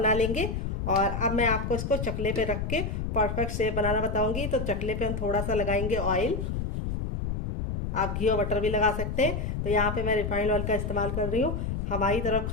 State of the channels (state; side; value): noise; left; rumble, 3 dB below the sound